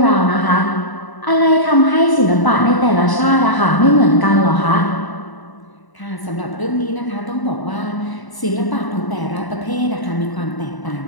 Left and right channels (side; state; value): right; late; 1.0 ms